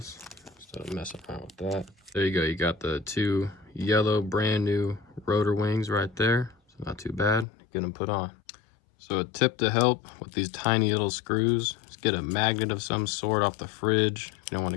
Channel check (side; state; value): right; drops out; at 7.5 s